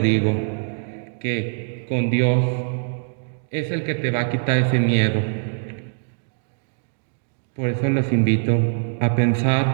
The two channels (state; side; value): silent; left; digital silence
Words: digo que con Dios es el que te va a quitar ese miedo. Por eso los invito a